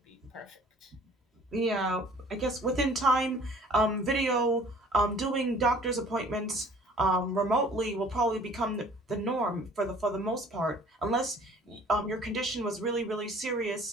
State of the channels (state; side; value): normal; both; correlation 0.52